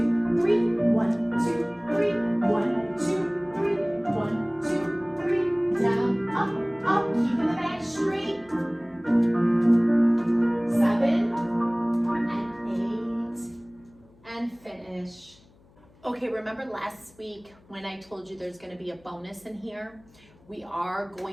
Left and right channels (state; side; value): noise; left; hum, 29 dB below the sound